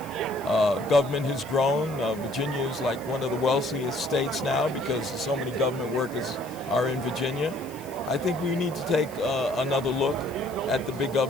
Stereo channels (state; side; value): noise; left; hiss, 21 dB below the sound